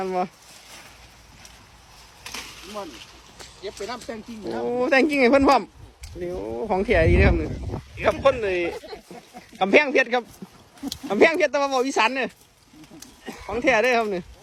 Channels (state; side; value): identical; both; correlation 1.00